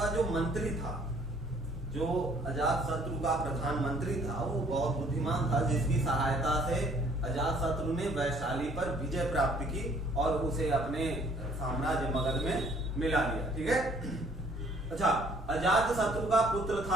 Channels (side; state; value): both; normal; correlation 0.59